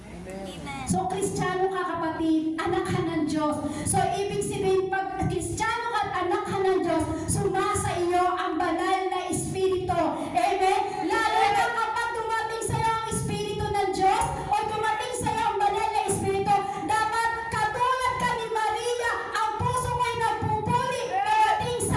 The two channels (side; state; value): both; identical; correlation 1.00